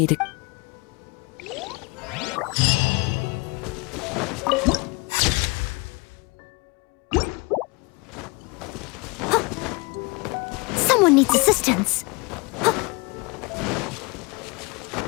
Someone needs assistance.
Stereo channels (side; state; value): right; quieter; 27.2 dB